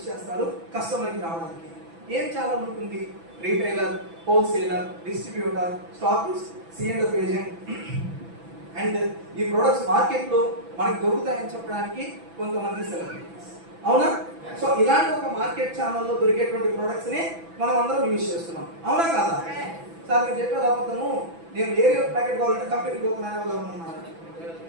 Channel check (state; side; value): late; left; 6.0 ms